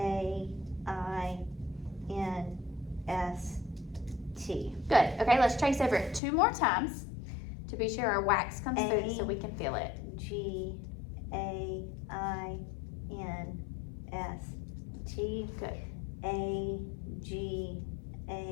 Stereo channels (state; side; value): drops out; right; at 6.2 s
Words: Good. Okay, let's trace over it 2 more times to be sure our wax comes through so we can feel it. G-A-I-N-S-T. Good. A-G-A-I-N-S-T.